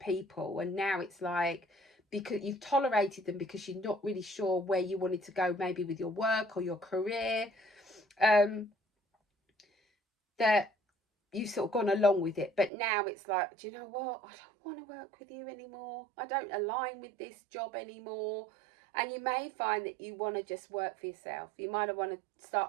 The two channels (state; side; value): drops out; left; at 12.7 s